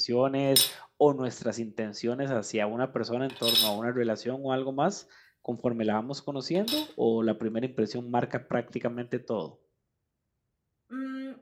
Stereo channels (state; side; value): identical; both; correlation 1.00